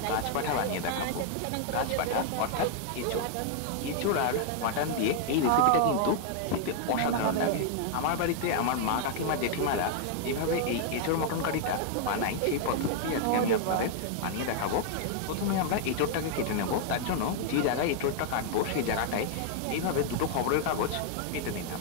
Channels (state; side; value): different; both; correlation 0.00